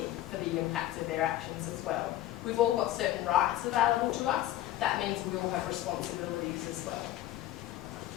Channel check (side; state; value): right; quieter; 14.1 dB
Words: for the impacts of their actions as well. We've all got certain rights available to us. That means we all have responsibilities as well.